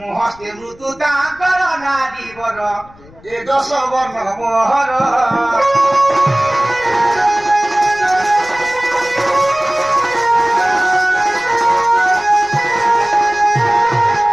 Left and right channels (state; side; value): noise; left; rumble, 24 dB below the sound